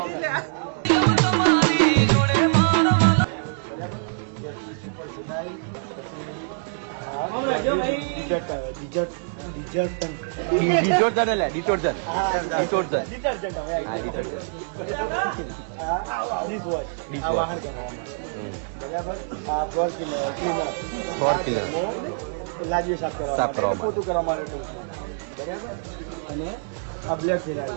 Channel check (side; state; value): left; silent; digital silence